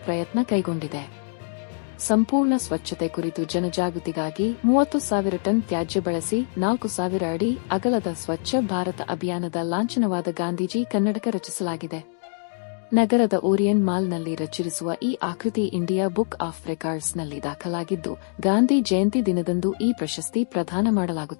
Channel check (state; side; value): silent; right; 62 dB below the other